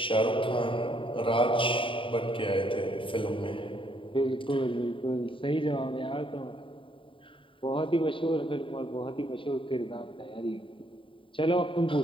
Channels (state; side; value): late; right; 0.25 ms